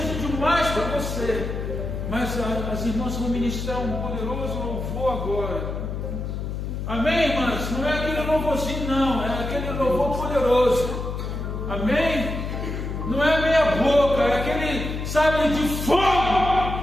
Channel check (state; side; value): noise; left; hum, 4 dB below the sound